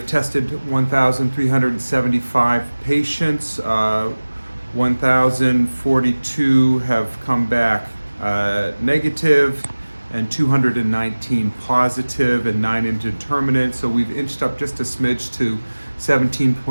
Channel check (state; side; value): inverted; both; correlation -1.00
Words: tested 1,375 patients. 1,042 have come back negative, and 219 positive and 9 indeterminate. So we've inched up just a smidge to